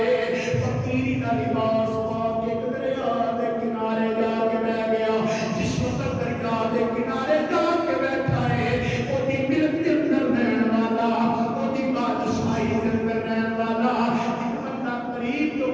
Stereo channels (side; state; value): both; identical; correlation 1.00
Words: فقیری دا لباس پاک ایک دریا دے کنارے جا کے بیٹھ گیا جس وقت دریا دے کنارے جا کے بیٹھا ہے وہ دی ملک کے اندر رہن والا وہ دی بادشاہی کے اندر رہن والا ایک بندہ قریب تو